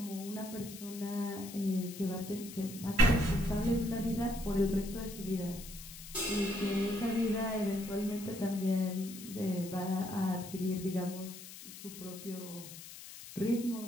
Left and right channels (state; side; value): noise; left; hiss, 13 dB below the sound